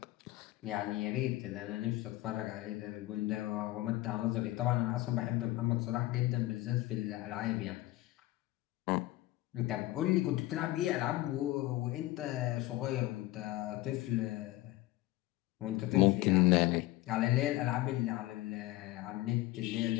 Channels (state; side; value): quieter; right; 17.4 dB